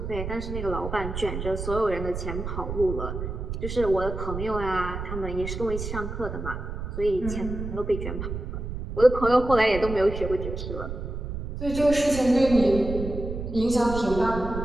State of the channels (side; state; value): right; noise; rumble, 6 dB below the sound